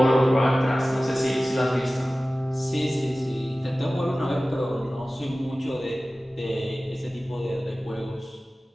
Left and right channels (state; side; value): normal; both; correlation 0.97